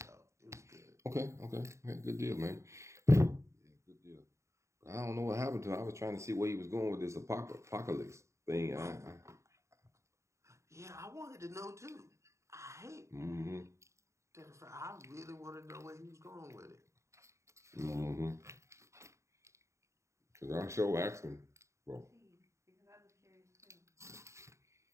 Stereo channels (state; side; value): late; left; 0.14 ms